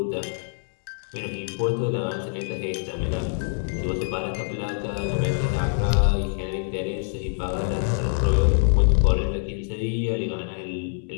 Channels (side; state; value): right; silent; 62 dB below the other